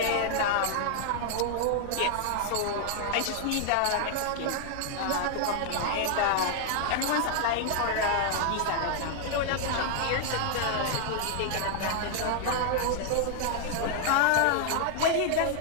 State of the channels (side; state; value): both; different; correlation 0.00